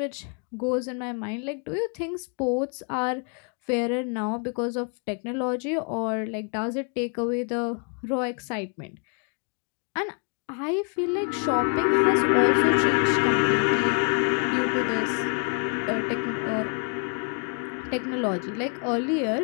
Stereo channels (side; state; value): right; quieter; 34.6 dB